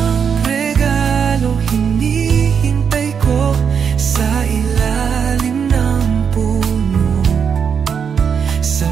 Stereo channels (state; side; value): quieter; left; 6.9 dB